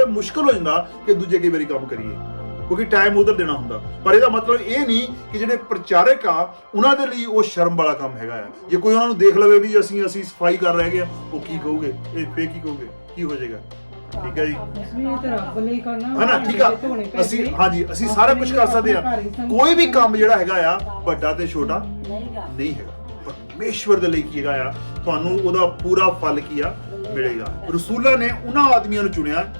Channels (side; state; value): both; inverted; correlation -1.00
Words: ਮੁਸ਼ਕਲ ਹੋ ਜਾਂਦਾ ਕਿ ਦੂਜੇ ਕਈ ਵਾਰੀ ਕੰਮ ਕਰੀਏ, ਕਿਉਂਕਿ ਟਾਈਮ ਉਧਰ ਦੇਣਾ ਹੁੰਦਾ। ਪਰ ਇਹਦਾ ਮਤਲਬ ਇਹ ਨਹੀਂ ਕਿ ਜਿਹੜੇ ਪ੍ਰਚਾਰਕ ਆ ਉਹਨਾਂ ਦੇ ਲਈ ਉਹ ਸ਼ਰਮ ਵਾਲਾ ਕੰਮ ਹੈਗਾ ਆ। ਜੇ ਕੋਈ ਉਹਨਾਂ ਨੂੰ ਦੇਖ ਲਵੇ ਵੀ ਅਸੀਂ ਸਫਾਈ ਕਰ ਰਹੇ ਹਾਂ, ਉਹ ਕੀ ਕਹੋਗੇ, ਇਹ ਫੇਰ ਕੀ ਕਹੋਗੇ, ਕੀ ਹੋ ਜਾਏਗਾ? ਠੀਕ ਹੈ ਜੀ, ਹਨਾ? ਠੀਕ ਆ, ਅਸੀਂ ਸਾਰਾ ਕੁਝ ਕਰ ਸਕਦੇ ਆ। ਕੋਈ ਵੀ ਕੰਮ ਜਿਹੜਾ ਹੈਗਾ ਆ ਵੱਡਾ ਤੇ ਛੋਟਾ ਨਹੀਂ ਹੈਗਾ। ਪਰਮੇਸ਼ਵਰ ਦੇ ਲਈ ਕੀ ਹੈਗਾ ਆ, ਤੁਹਾਨੂੰ ਉਹਦਾ ਪੂਰਾ ਫਲ ਕੀ ਆ ਮਿਲੇਗਾ। ਰਸੂਲਾਂ ਨੇ ਉਹਨਾਂ ਆਦਮੀਆਂ ਨੂੰ ਚੁਣਿਆ